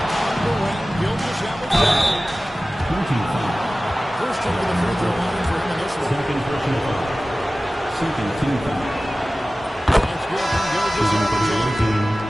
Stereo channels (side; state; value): both; normal; correlation 0.97